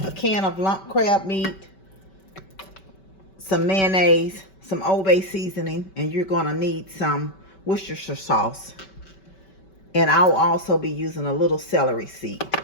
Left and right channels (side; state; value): right; late; 5.2 ms